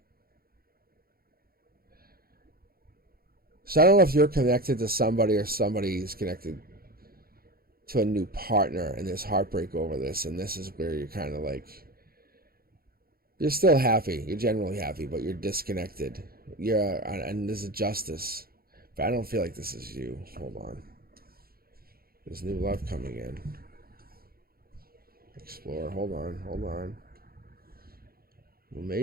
So I don't know if you're connected to somebody or somebody's connected to a new partner and there's heartbreak over this, and this is where you're kind of like, you're still happy, you're generally happy, but you're disconnected. And there's a justice, but I don't feel like this is you. Hold on. There's new love coming in. Explore. Hold on. Well,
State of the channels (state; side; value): late; left; 0.44 ms